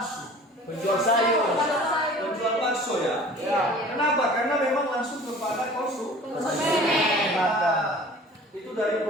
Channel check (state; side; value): normal; both; correlation 0.45